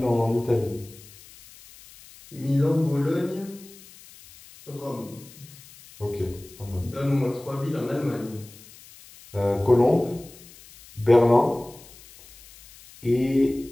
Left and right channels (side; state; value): left; noise; hiss, 22 dB below the sound